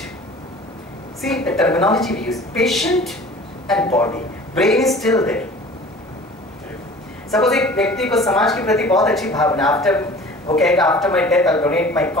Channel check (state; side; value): normal; both; correlation 0.44